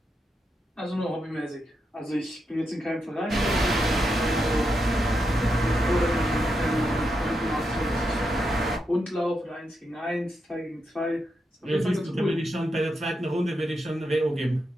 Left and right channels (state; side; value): normal; both; correlation 0.84